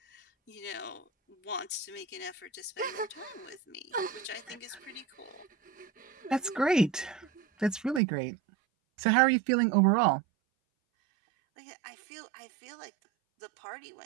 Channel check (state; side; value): drops out; left; at 8.0 s